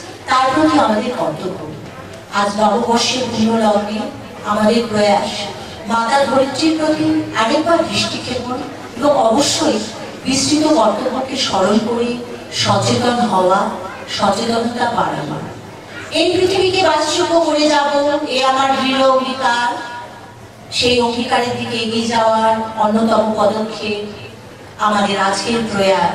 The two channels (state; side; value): identical; both; correlation 1.00